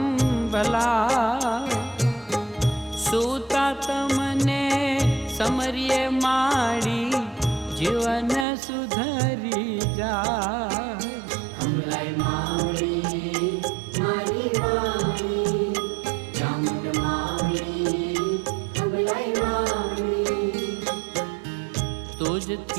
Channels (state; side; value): drops out; left; at 8.5 s